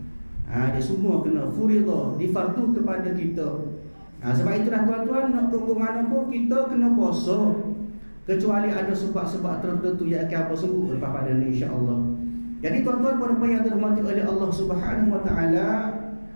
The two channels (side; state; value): both; inverted; correlation -1.00